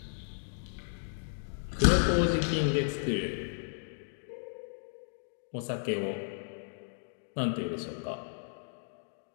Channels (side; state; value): right; silent; digital silence